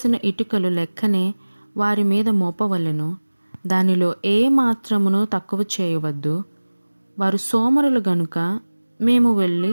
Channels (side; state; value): both; inverted; correlation -1.00